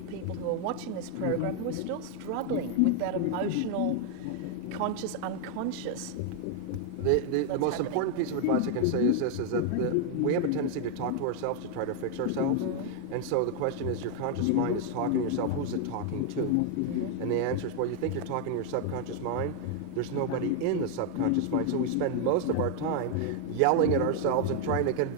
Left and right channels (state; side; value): different; both; correlation 0.00